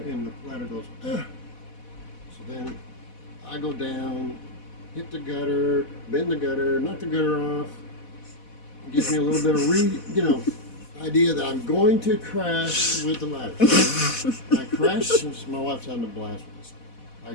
and the ladder goes, ugh. So then I go down, hit the gutter, bend the gutter, knock the gutter off. It gives me a little bit of idea that I'm going to crash with the ladder. I crashed. My wife's having a blast with this. I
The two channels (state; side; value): late; right; 4.1 ms